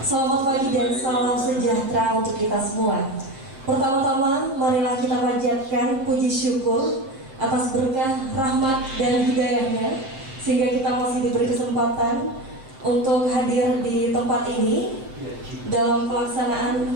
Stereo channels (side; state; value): left; late; 7.6 ms